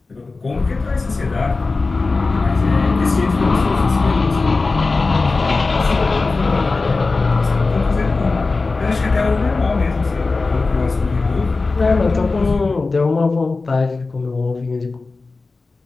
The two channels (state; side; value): quieter; right; 3.8 dB